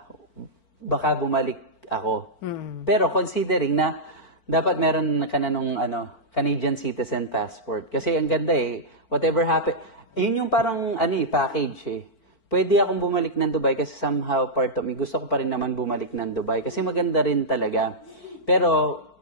Baka bumalik ako. Pero considering na dapat meron ka na nung Canadian citizen passport. Kasi ang ganda whatever happen, yun yung parang package Pwede akong bumalik ng Dubai kasi somehow part of me, gusto ko pa rin naman bumalik ng Dubai kasi maganda rin talaga. Pero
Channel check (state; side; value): late; right; 4.5 ms